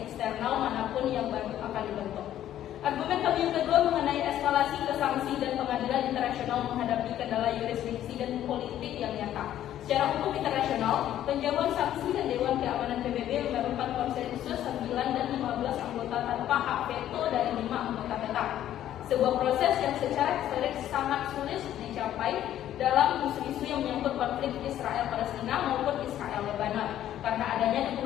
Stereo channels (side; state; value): right; quieter; 11.9 dB